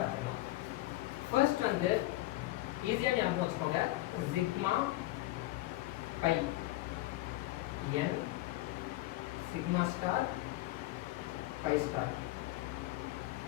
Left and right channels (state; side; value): quieter; right; 17.7 dB